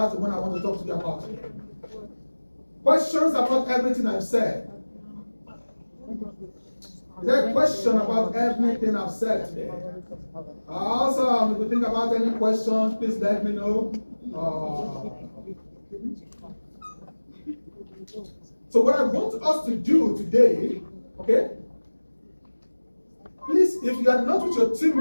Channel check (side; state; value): both; inverted; correlation -1.00